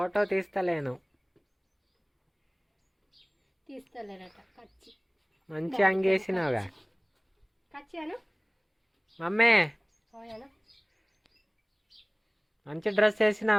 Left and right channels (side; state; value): both; identical; correlation 1.00